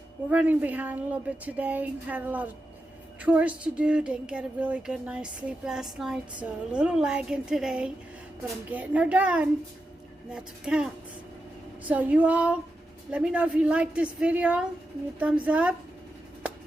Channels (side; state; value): both; normal; correlation 0.88